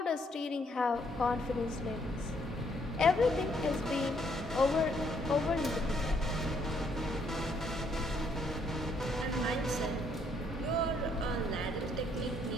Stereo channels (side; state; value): both; normal; correlation 0.70